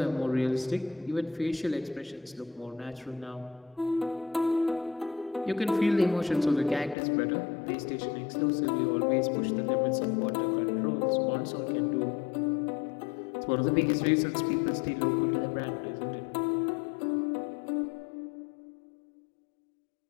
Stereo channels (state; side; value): drops out; right; at 7.0 s